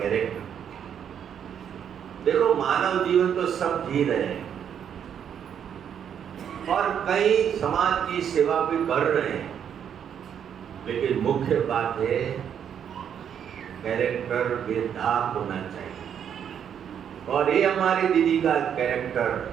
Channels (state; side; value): quieter; left; 8.6 dB